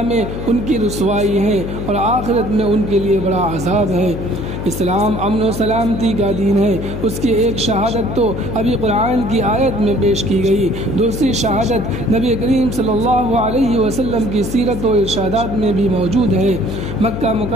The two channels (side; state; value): left; noise; hum, 6 dB below the sound